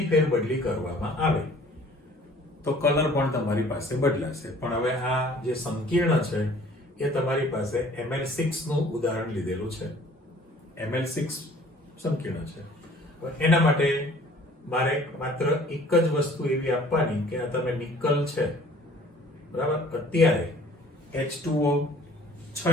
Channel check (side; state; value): both; normal; correlation 0.53